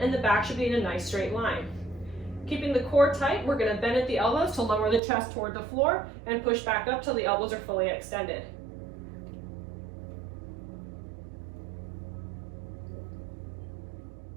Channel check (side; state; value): left; drops out; at 5.0 s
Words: the back should be in a nice straight line. Keeping the core tight, we're going to bend at the elbows to lower the chest toward the floor and push back up till the elbows are fully extended.